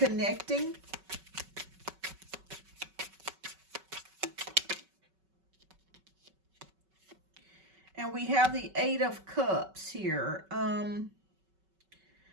And we have the Eight of Cups here.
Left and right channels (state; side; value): late; left; 5.3 ms